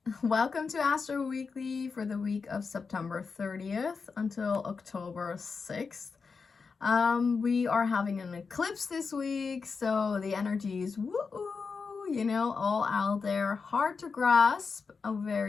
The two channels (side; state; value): right; quieter; 5.0 dB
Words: Welcome to Astro Weekly for the week of September 30th until October 6th. We are having an eclipse this week, so the energy is all out there, hard to grasp, a